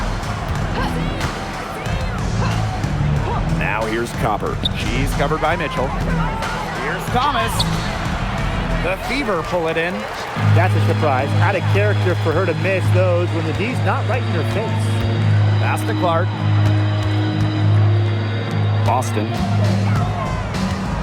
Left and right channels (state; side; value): identical; both; correlation 1.00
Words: Now here's Copper. She's covered by Mitchell. Here's Thomas. The Fever pull it in. That's a surprise. Out of character for her to miss those when the D's not right in her face. Pass to Clark. Boston.